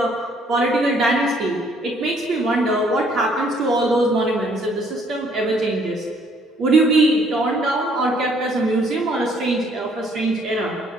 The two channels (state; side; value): normal; both; correlation 0.64